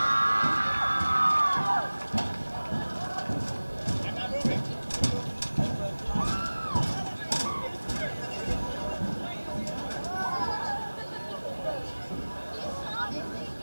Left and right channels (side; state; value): both; inverted; correlation -1.00